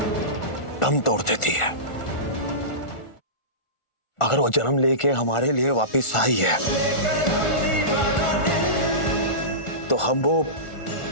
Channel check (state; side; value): late; right; 1.4 ms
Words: दम तोड़ देती है। अगर वो जन्म लेके हमारे लिए वापस आई है तो हम वो